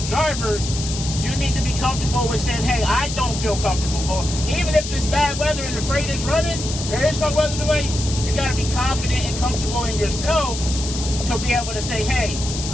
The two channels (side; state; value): left; noise; hiss, 7 dB below the sound